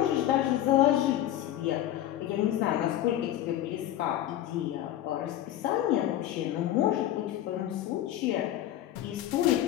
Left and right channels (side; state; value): right; quieter; 12.7 dB